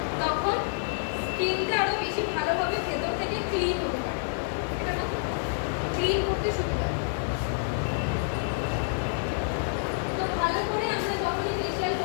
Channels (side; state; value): right; silent; digital silence